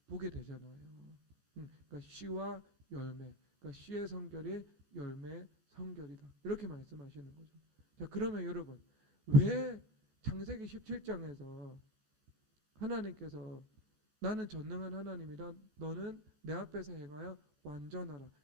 보게 되잖아요. 그러니까 씨와 열매, 그러니까 씨의 성결이 열매의 성결이다. 이렇게 말씀하시는 거죠. 자, 그러면 여러분, 왜 창세기 17장에서 하나님께서 나는 전능한 하나님이다, 너는 내 앞에서 행하여 완전하라,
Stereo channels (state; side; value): late; left; 14 ms